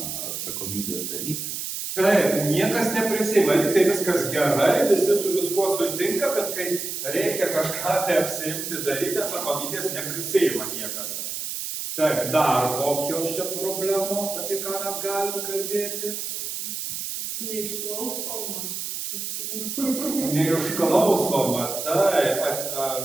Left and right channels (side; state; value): right; noise; hiss, 5 dB below the sound